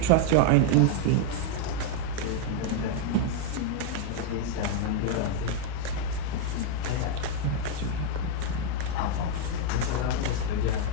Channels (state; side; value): different; both; correlation 0.00